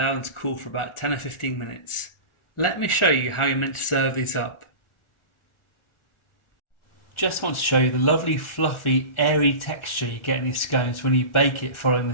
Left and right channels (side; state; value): right; late; 1.4 ms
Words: them to cool for about 10 or 15 minutes. Let me show you how you're meant to serve these up. Just want to show you the lovely fluffy airy texture you get in these scones when you bake it following the